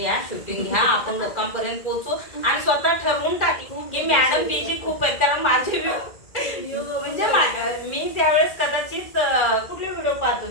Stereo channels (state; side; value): late; right; 2.1 ms